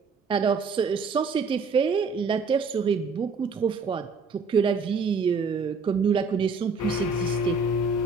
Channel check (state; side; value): quieter; left; 4.3 dB